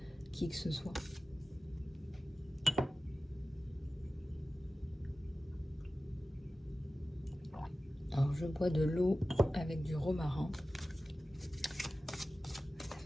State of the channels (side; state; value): both; normal; correlation 0.95